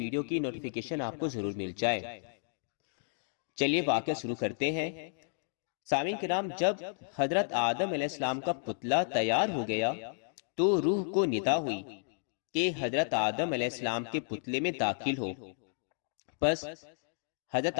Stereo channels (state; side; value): silent; right; digital silence